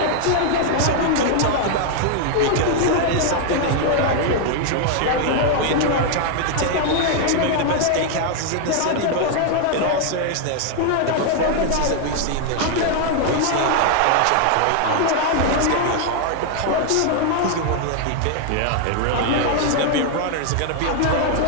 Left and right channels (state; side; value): different; both; correlation 0.00